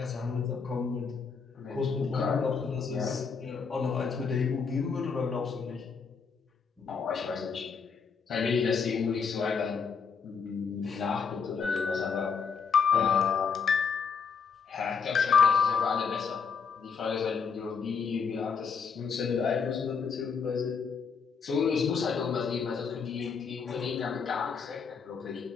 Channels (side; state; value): right; quieter; 5.8 dB